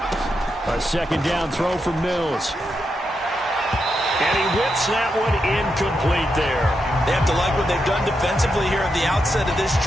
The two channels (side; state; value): both; normal; correlation 0.84